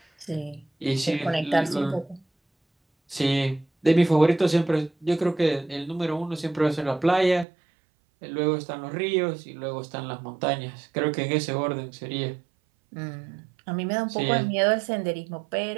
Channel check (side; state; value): left; drops out; at 7.5 s